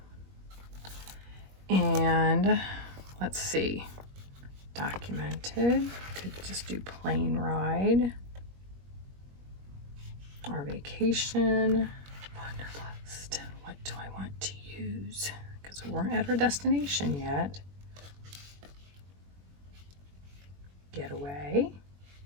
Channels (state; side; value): late; left; 21 ms